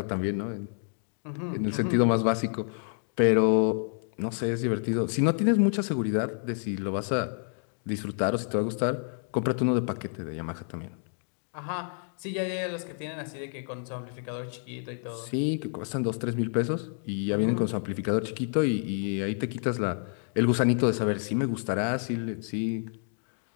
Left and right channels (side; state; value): right; silent; 59 dB below the other